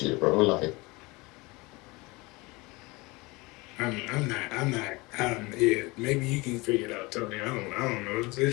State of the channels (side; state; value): right; quieter; 24.0 dB